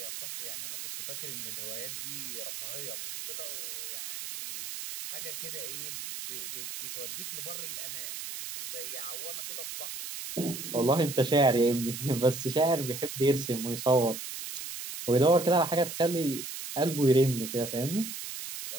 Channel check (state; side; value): noise; right; hiss, 7 dB below the sound